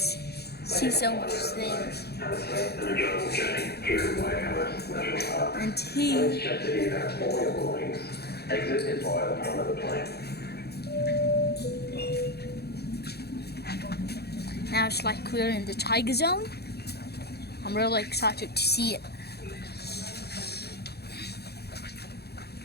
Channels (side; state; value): right; late; 0.47 ms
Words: see so much things. And he. Now it's like we're in the tiger zone. I'm really excited to see it.